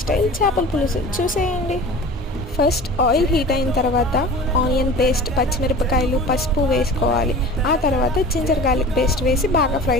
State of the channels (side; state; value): both; normal; correlation 0.38